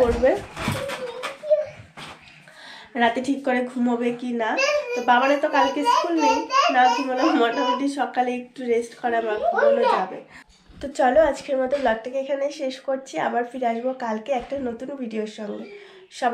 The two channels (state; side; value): identical; both; correlation 1.00